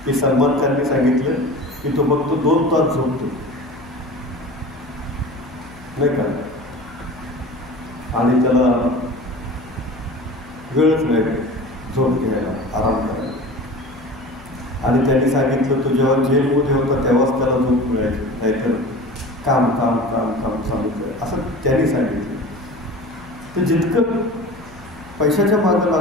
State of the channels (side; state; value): left; noise; hum, 23 dB below the sound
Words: की सलमान खानने सांगितलं की तो फक्त 2 तास झोपतो, नाही का, आणि त्याला वेळच नाही झोप घ्यायला, आराम करायला. आणि त्यांनी सांगितलं तो जेव्हा जेलमध्ये होता तेव्हाच त्याला झोप मिळायची, नाहीतर काम काम काम काम चालू कर, असं त्यांनी सांगितलं. तर जितकं पैशाच्या मागे